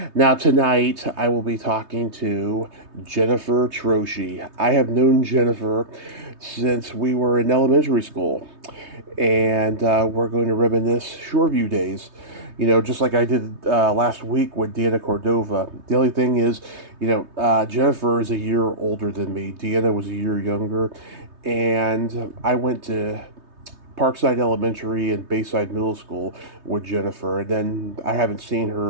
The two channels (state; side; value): late; left; 3.2 ms